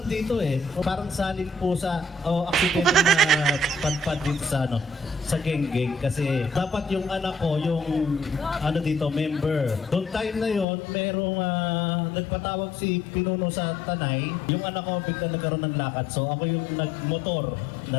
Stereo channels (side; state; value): right; drops out; at 10.7 s